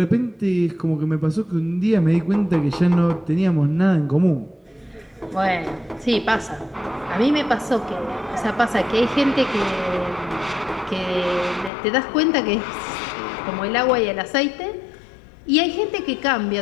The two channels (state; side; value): drops out; right; at 11.7 s